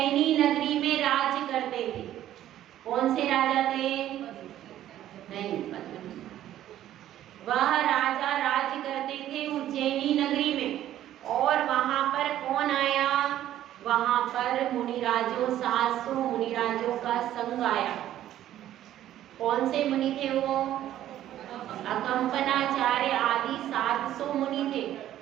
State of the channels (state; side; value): quieter; left; 12.4 dB